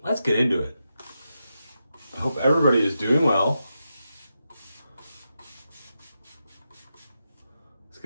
let's get into it. I hope everybody is doing well. Let's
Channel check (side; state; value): both; inverted; correlation -0.87